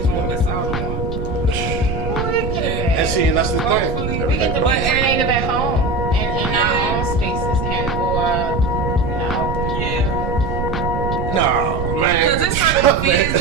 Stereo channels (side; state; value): right; noise; rumble, 3 dB below the sound